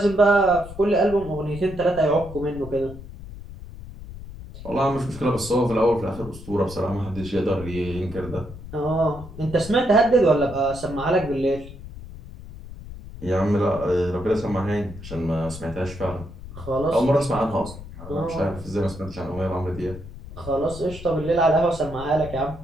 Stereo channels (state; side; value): noise; left; rumble, 14 dB below the sound